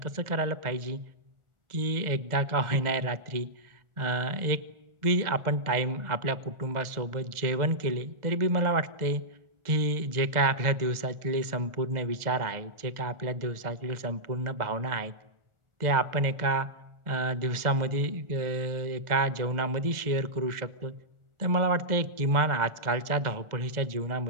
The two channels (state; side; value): late; left; 1.4 ms